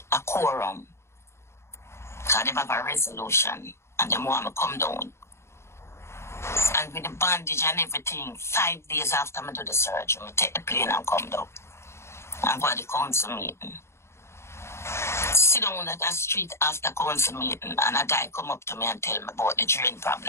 a quorum. Because they have a resolution and they want me to come down. And with the bandage and everything, 5 days after I do the surgery, I take the plane and come down. And go to the council meeting. Sit down at the street after council meeting, and a guy come up to me and tell me about the drain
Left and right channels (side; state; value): right; late; 0.13 ms